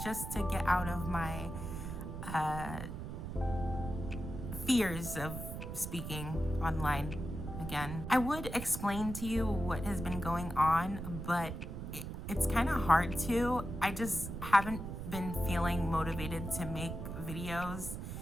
just to get out of my fears of speaking online again. I would explain to you what has been going on, but it's kind of hard to. I just haven't been feeling motivated to make videos,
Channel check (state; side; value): noise; right; rumble, 7 dB below the sound